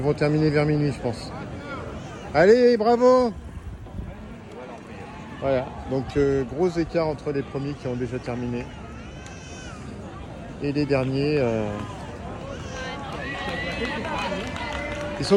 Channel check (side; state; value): both; identical; correlation 1.00